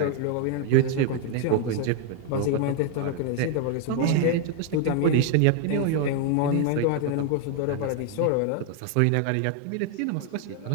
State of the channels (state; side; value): different; both; correlation 0.01